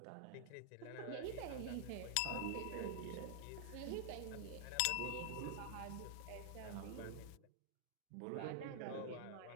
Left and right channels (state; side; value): different; both; correlation 0.00